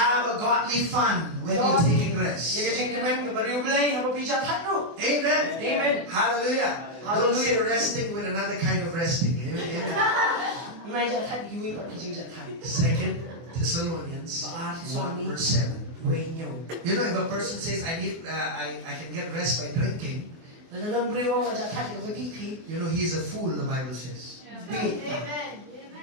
a godly fun when you're taking rest. Amen. Amen. Hallelujah. Don't say resting with another kind of resting. Amen. 2 Thessalonians 1 verse 7. You know, if a person says, I can get rest by drinking, you know, he's a fool, the Bible says. Amen.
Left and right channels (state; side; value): late; left; 24 ms